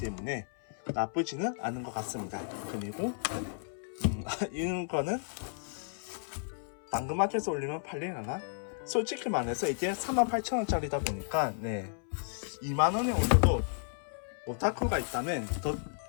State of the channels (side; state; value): right; silent; 56 dB below the other